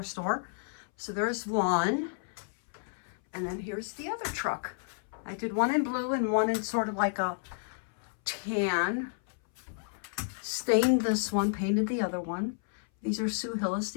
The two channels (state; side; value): silent; right; 57 dB below the other